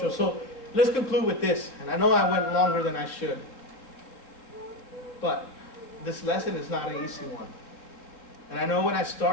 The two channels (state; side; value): late; right; 3.6 ms